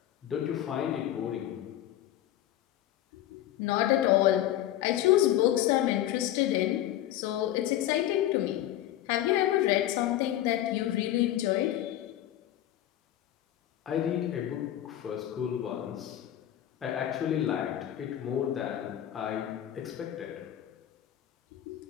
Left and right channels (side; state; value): right; quieter; 12.8 dB